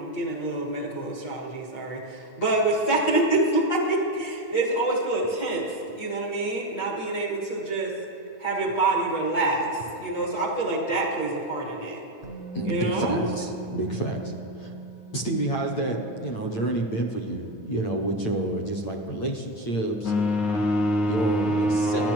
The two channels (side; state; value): right; late; 8.9 ms